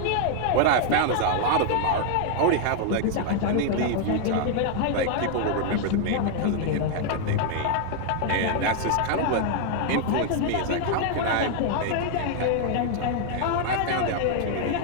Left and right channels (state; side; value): different; both; correlation 0.00